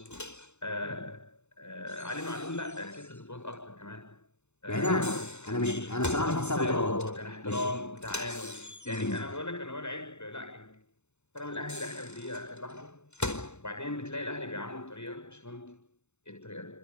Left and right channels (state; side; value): late; right; 0.82 ms